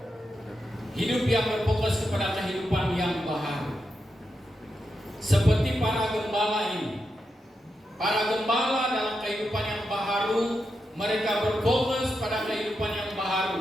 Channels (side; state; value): both; normal; correlation 0.86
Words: Hidup yang berfokus kepada kehidupan yang baharu. Seperti para gembala ini. Para gembala dalam kehidupan yang baharu, mereka berfokus pada kehidupan yang